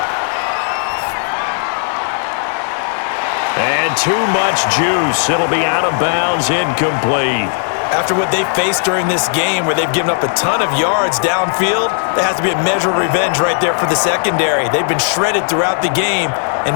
And too much juice. It'll be out of bounds, incomplete. After what they faced during this game where they've given up a ton of yards downfield, there has to be a measure of revenge right there for the secondary. They've been shredded throughout the game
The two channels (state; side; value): silent; right; digital silence